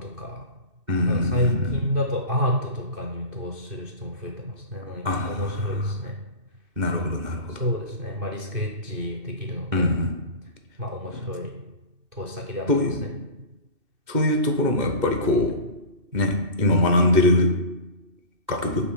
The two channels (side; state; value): left; late; 2.7 ms